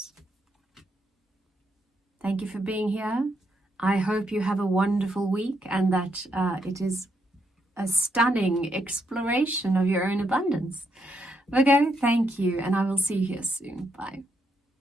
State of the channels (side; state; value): both; normal; correlation 0.78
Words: Thank you for being here. I hope you have a wonderful week and that it is a stunning exploration of your own abundance. Virgo, thank you, and I will see you here soon. Bye.